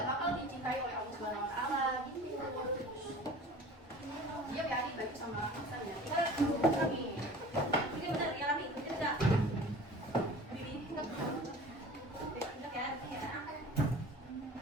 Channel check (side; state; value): both; normal; correlation 0.41